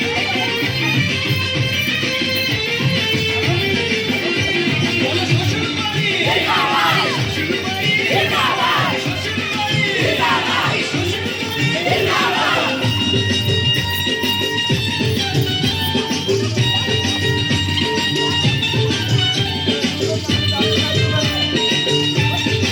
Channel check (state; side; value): identical; both; correlation 1.00